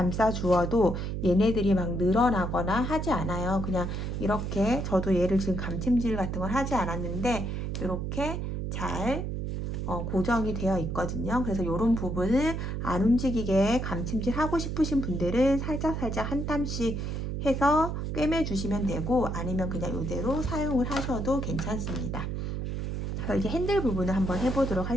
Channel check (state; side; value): noise; right; hum, 3 dB below the sound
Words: 주어도 얘네들이 막 늘어나거나 하지 않아요. 그냥 이렇게, 저도 얘를 지금 감침질 같은 걸 하지 않았는데 이렇게 잘 고정이 되어 있거든요. 그래서 이런 부분을 안 움직이게 감침질 하고 싶으신 분들은 살짝 한 땀씩 해서 꿰매 주시면 되고, 아니면 그냥 이대로 사용을 하셔도 괜찮습니다. 그래서 이제 핸들 부분을 한번 해보도록